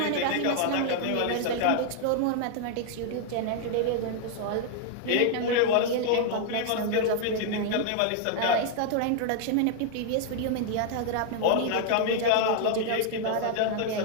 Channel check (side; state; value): both; different; correlation 0.00